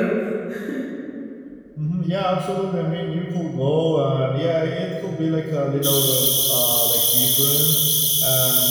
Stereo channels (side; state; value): both; identical; correlation 1.00